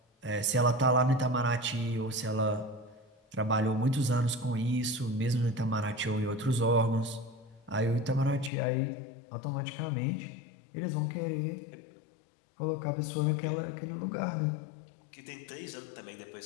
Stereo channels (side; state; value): right; drops out; at 8.5 s